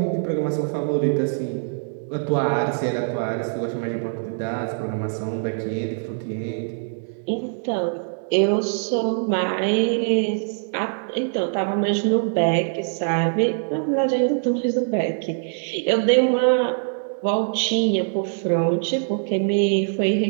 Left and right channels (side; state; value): left; silent; digital silence